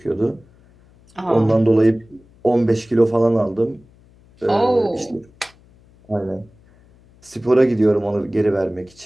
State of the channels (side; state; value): left; noise; hum, 29 dB below the sound